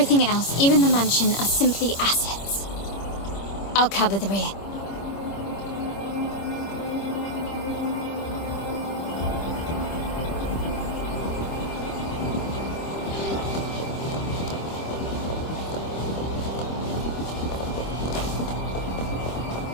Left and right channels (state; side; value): late; right; 25 ms